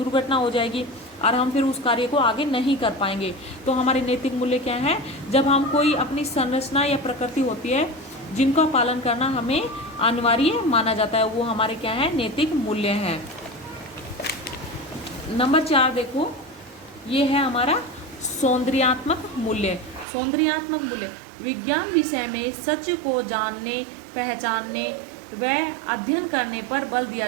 हो जाएगी और हम फिर उस कार्य को आगे नहीं कर पाएंगे। तो हमारे नैतिक मूल्य क्या है? जब हम कोई अपनी संरचना या प्रकृति होती है जिनका पालन करना हमें अनिवार्य माना जाता है, वो हमारे क्या है? नैतिक मूल्य हैं। नंबर 4 देखो, ये है हमारा सौंदर्यात्मक मूल्य। सौंदर्यात्मक मूल्य विज्ञान विषय में सच को जानने, पहचानने वह अध्ययन करने पर बल दिया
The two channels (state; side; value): drops out; left; at 20.1 s